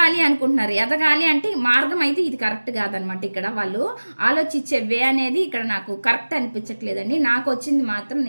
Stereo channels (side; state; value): both; inverted; correlation -1.00